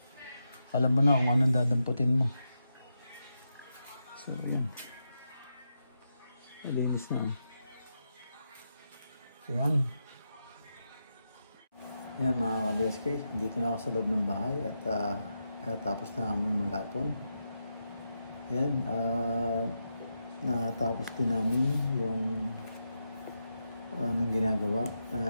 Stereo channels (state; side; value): inverted; both; correlation -0.86